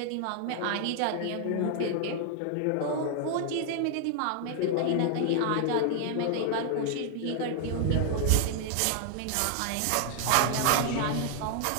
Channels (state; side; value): different; both; correlation 0.00